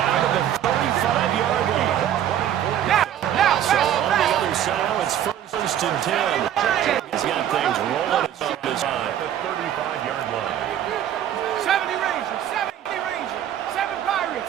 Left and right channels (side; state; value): left; quieter; 10.7 dB